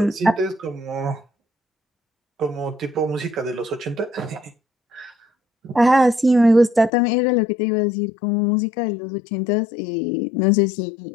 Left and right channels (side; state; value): right; drops out; at 6.9 s